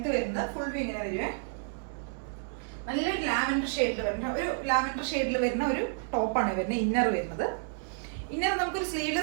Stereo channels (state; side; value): silent; left; 58 dB below the other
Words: വരുന്നത്. ഫുൾ വ്യൂ ഇങ്ങനെ വരുവേ. നല്ലൊരു ലാവൻഡർ ഷെയ്ഡിൽ വരുന്ന ഒരു ടോപ്പാണ് വരുന്നത്. ഇന്നർ വരുന്നത്, ഇന്നർ നമുക്കൊരു